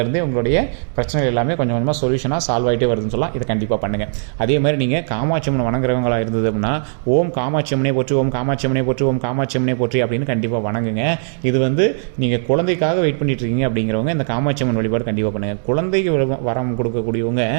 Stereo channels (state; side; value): silent; left; digital silence